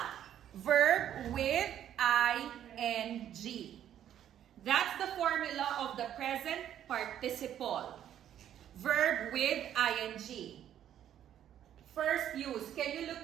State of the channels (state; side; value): quieter; left; 10.6 dB